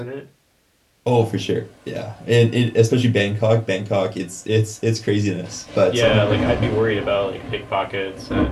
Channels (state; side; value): identical; both; correlation 1.00